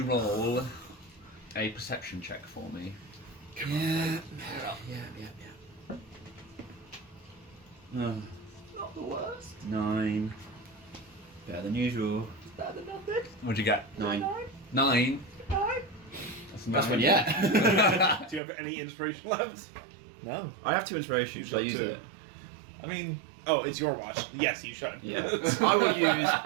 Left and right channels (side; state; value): left; drops out; at 18.4 s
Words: roll a perception check for me? Yeah. Not the worst. 9. Better than usual. Better than nothing. What'd you get? 9. 9. That's one yet. Do you have any inspiration left? No. I have 2 inspiration. Should I use it? I mean, Oh, it's your watch. Yes, you should. Yeah. I will use